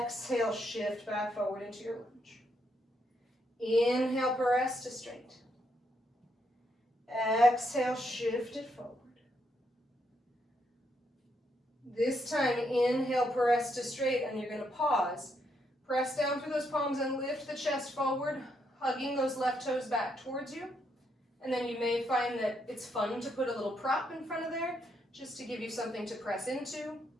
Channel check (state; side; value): normal; both; correlation 0.77